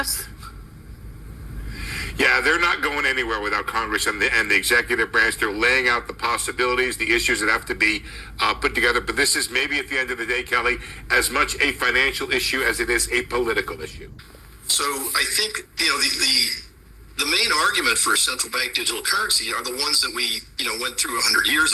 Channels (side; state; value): both; identical; correlation 1.00